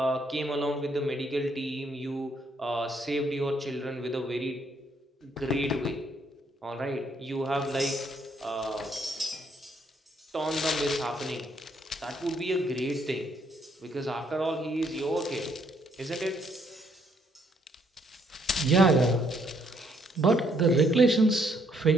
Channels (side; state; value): both; normal; correlation 0.70